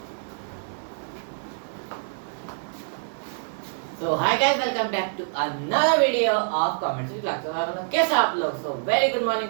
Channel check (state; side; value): silent; left; digital silence